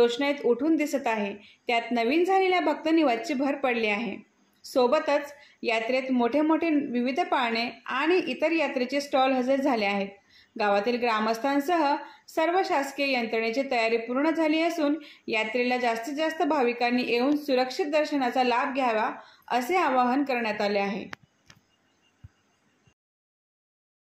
उठून दिसत आहे। त्यात नवीन झालेल्या भक्त निवासची भर पडली आहे। सोबतच यात्रेत मोठे मोठे विविध पाळणे आणि इतर यात्रेचे स्टॉल हजर झाले आहेत। गावातील ग्रामस्थांसह सर्व शासकीय यंत्रणेची तयारी पूर्ण झाली असून यात्रेला जास्तीत जास्त भाविकांनी येऊन सुरक्षित दर्शनाचा लाभ घ्यावा असे आवाहन करण्यात आले आहे।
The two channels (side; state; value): both; identical; correlation 1.00